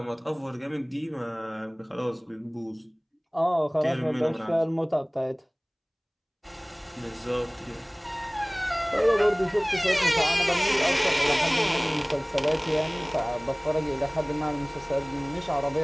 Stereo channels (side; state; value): both; identical; correlation 1.00